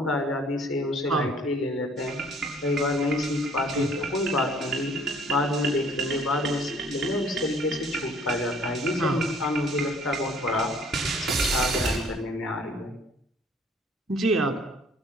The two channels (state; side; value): normal; both; correlation 0.56